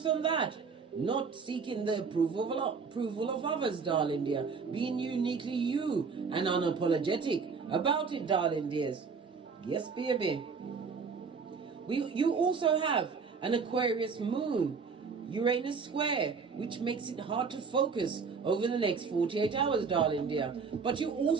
on that. Not seeking the approval of others, darling dear. Being uniquely you and unapologetic about it, darling dears. Yes, baby. You also have an Aquarius moon, Uranus square, which makes it hard to focus over the next 48 hours, darling dear. But you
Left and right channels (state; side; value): quieter; left; 5.3 dB